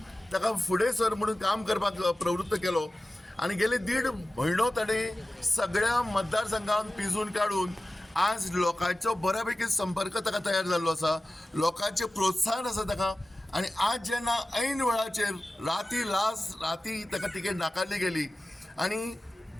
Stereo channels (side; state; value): both; normal; correlation 0.95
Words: ताका फुडें सर म्हणून काम करपाक प्रवृत्त केलो आनी गेले 1.5 म्हयनो ताणें सगळ्या मतदारसंघान पिंजून काडून आज लोकांचो बऱ्यापैकी संपर्क ताका तयार जाल्लो आसा, लोकांचें प्रोत्साहन आसा ताका. आनी आज जेन्ना ऐन वेळाचेर राती ताका तिकेट नाकारली गेली आनी